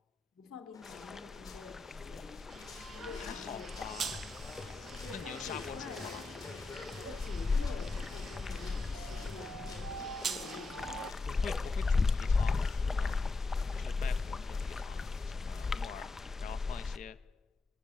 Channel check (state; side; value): quieter; right; 3.4 dB